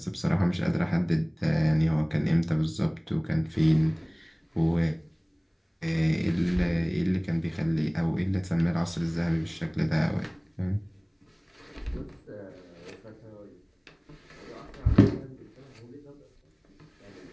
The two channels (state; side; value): identical; both; correlation 1.00